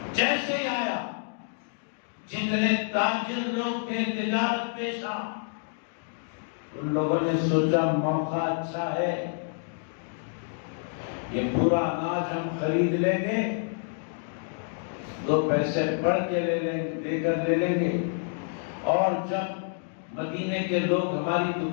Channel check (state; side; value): silent; right; digital silence